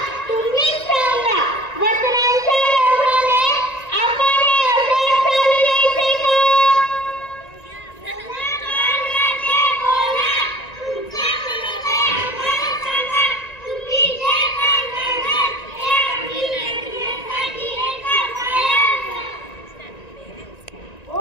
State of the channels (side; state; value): right; late; 1.9 ms